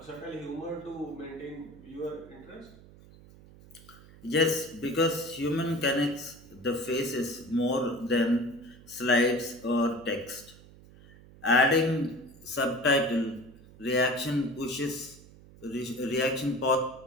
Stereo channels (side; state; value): right; noise; hum, 22 dB below the sound